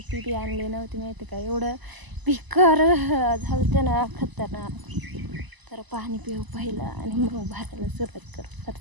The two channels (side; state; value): left; late; 1.0 ms